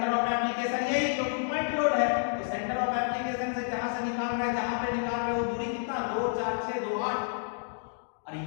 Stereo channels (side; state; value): right; silent; digital silence